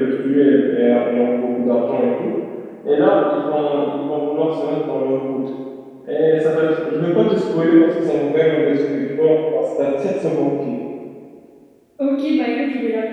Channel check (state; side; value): identical; both; correlation 1.00